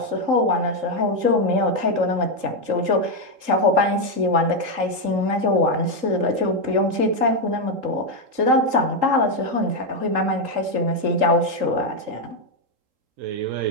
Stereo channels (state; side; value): late; left; 3.8 ms